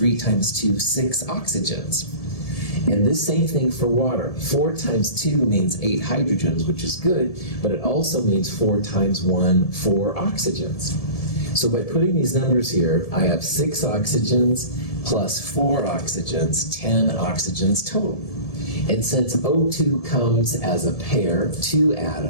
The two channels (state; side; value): late; right; 1.7 ms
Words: times 2, 6 oxygens. And this same thing for water. 4 times 2 means 8 hydrogens, which is good, but it also means 4 times 1, 4 oxygens. So by putting these numbers here, I have 6 oxygens plus 4 oxygens, 10 oxygens total. And since O2 comes as a pair, 2